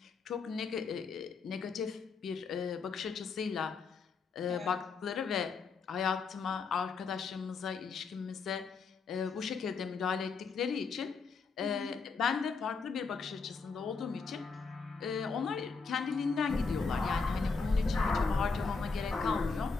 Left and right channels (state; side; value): quieter; right; 4.9 dB